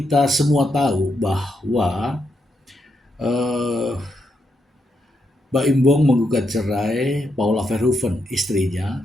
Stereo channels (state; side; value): normal; both; correlation 0.81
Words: semua tahu bahwa eh, Mbak Imbong menggugat cerai Paula Verhoeven, istrinya,